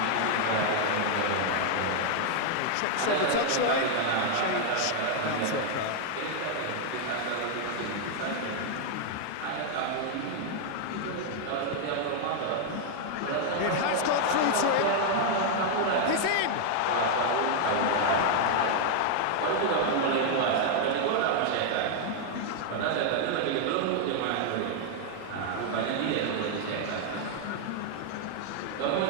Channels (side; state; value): both; different; correlation 0.00